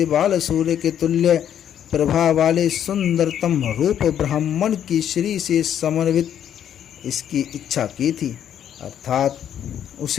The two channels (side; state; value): right; quieter; 9.8 dB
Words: बाल सूर्य के तुल्य प्रभा वाले सुंदरतम रूप ब्राह्मण की श्री से समन्वित इसकी इच्छा की थी, अर्थात